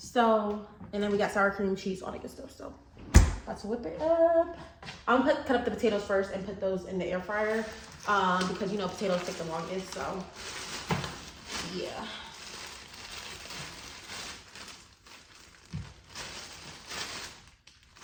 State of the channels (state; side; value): identical; both; correlation 1.00